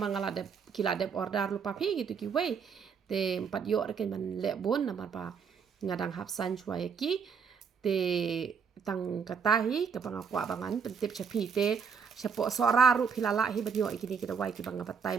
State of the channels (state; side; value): quieter; left; 6.4 dB